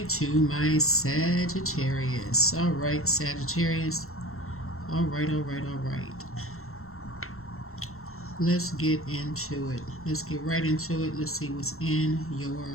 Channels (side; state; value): right; late; 0.63 ms